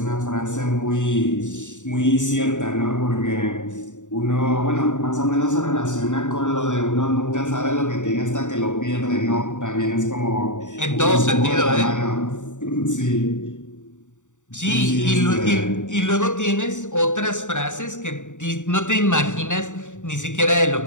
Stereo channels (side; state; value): right; late; 0.85 ms